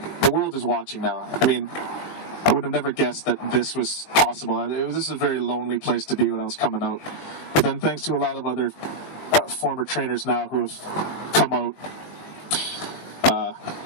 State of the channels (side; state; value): right; late; 20 ms